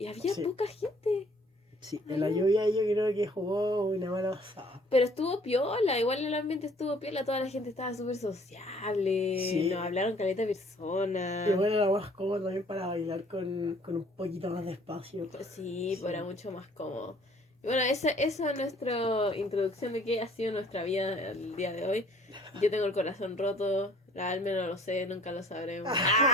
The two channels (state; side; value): normal; both; correlation 0.57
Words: había poca gente. Sí, en la lluvia yo creo que jugó una mala pasada. Pero estuvo piola, igual el ambiente estuvo piola, toda la gente estaba súper sociable, Sí. nos hablaron caleta de personas. Y bueno, era más cómodo también para bailar con un poquito más de espacio. Sí, pues era mucho más cómodo. Y bueno, esa es nuestra introducción de qué ha sido nuestra vida el día de hoy. Yo tengo el corazón roto, la Alme no lo sé, nunca lo sabremos.